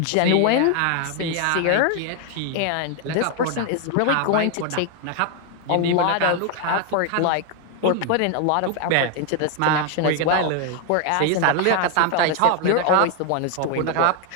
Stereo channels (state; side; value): different; both; correlation 0.01